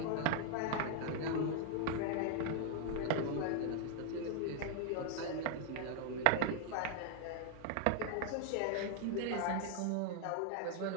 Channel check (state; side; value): different; both; correlation 0.00